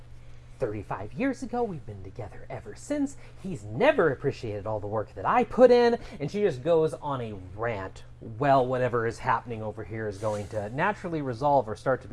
35 years ago, we've been together ever since, he's never appreciated all the work that I put in, and she just goes on a rant. Well, whatever is happening over here is going to naturally resolve or start to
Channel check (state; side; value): identical; both; correlation 1.00